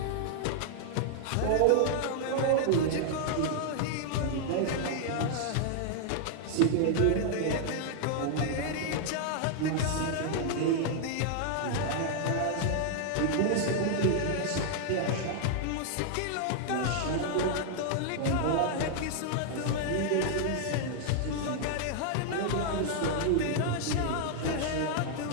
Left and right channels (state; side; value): different; both; correlation -0.01